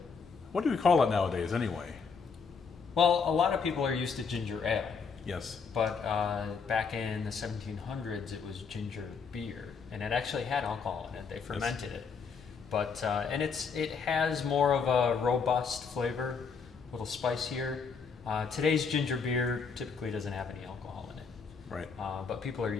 What do we call it nowadays anyway? Well, a lot of people are used to ginger ale. Yes. But back in the 1700s, it was ginger beer. And it actually had alcohol in it. They fermented it. But and it has more of a robust flavor, a little spicier. Today's ginger beer typically doesn't have any alcohol in it. Right. But people are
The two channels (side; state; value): right; quieter; 5.5 dB